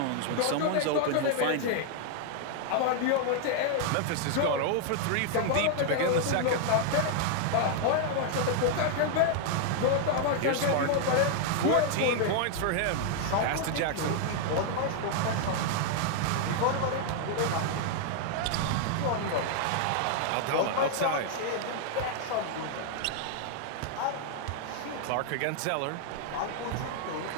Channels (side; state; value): both; different; correlation 0.00